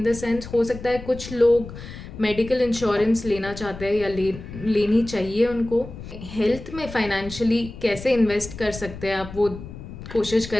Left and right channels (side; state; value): left; noise; rumble, 13 dB below the sound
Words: द सेंस हो सकता है कुछ लोग मेडिकल इंश्योरेंस लेना चाहते हैं या लेनी चाहिए उनको। हेल्थ में फाइनेंशियली कैसे इन्वेस्ट कर सकते हैं आप, वो कोशिश